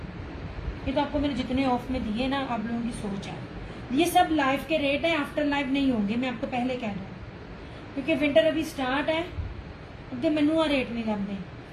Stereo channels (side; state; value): both; identical; correlation 1.00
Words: ये तो आपको मैंने जितने ऑफ में दिए ना, आप लोगों की सोच है। ये सब लाइव के रेट है, आफ्टर लाइव नहीं होंगे, मैं आपको पहले कह दूँ, क्योंकि विंटर अभी स्टार्ट है, अगे मैनू रेट नहीं लगते।